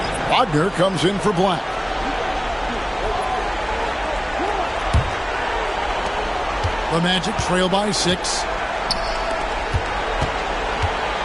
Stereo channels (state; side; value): identical; both; correlation 1.00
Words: Wagner comes in for Black. The Magic trail by 6.